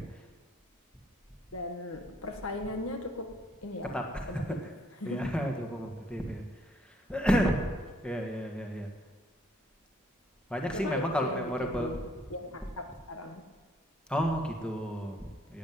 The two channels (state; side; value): normal; both; correlation 0.66